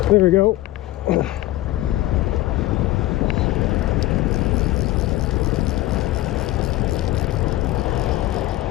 There we go.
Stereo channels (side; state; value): right; quieter; 16.4 dB